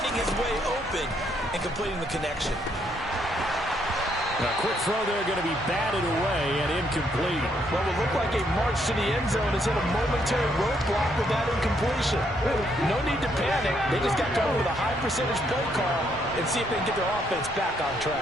his way open and completing the connection. A quick throw there going to be batted away and incomplete. Well, it looked like a march to the end zone is in a momentary roadblock with that incompletion. No need to panic. They just got to go with a high percentage play call and see if they can get their offense back on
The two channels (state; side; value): normal; both; correlation 0.72